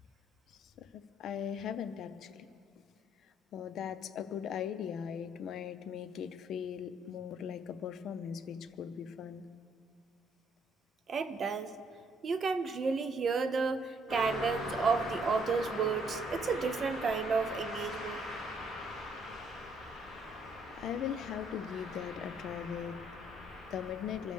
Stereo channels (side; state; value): both; normal; correlation 0.67